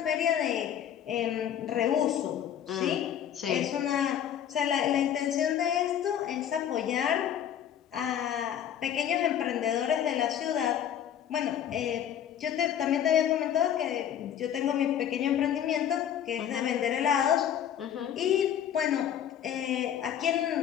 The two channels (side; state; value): right; quieter; 9.7 dB